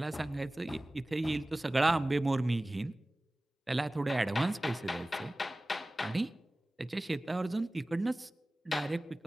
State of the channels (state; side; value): normal; both; correlation 0.97